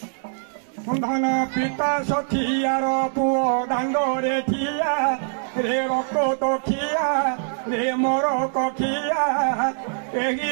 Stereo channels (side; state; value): left; silent; digital silence